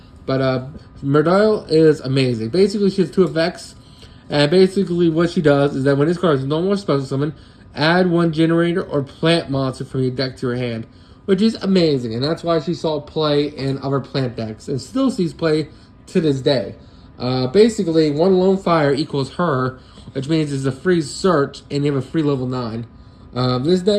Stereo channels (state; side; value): identical; both; correlation 1.00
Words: But Mardell is amazing. Basically, she has 2 effects. And basically, what she does is that when this card is no more special summon, add 1 Generator or Plant monster from your deck to your hand, which is amazing. And that's why she saw play in other plant decks and still sees play to this day. Basically, 1 Lone Fire equals her, which means it's a free search and you have a free level 9. This